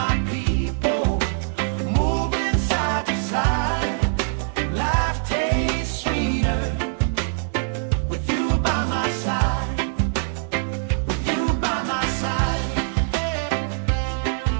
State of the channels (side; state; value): left; silent; digital silence